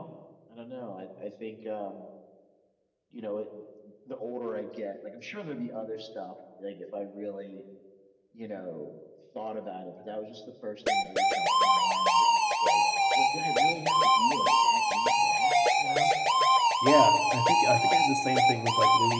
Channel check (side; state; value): both; identical; correlation 1.00